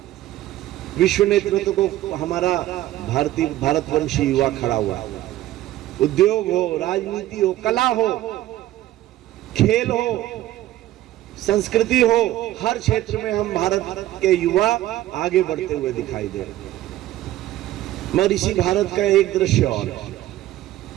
विश्व नेतृत्व को हमारा भारतवंशी युवा खड़ा हुआ है। उद्योग हो, राजनीति हो, कला हो, खेल हो, संस्कृति हो, हर क्षेत्र में हम भारत के युवा आगे बढ़ते हुए दिखाई दे रहे हैं। मगर इसी भारत का एक दृश्य और है,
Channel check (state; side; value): quieter; left; 14.7 dB